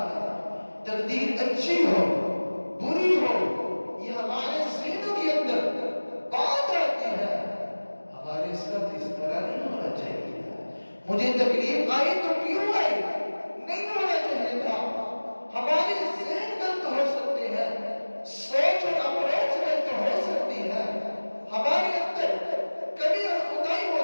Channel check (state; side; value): inverted; both; correlation -1.00